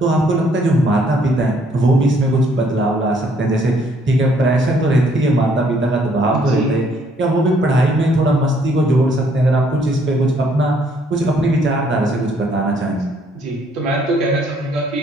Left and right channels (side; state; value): both; normal; correlation 0.66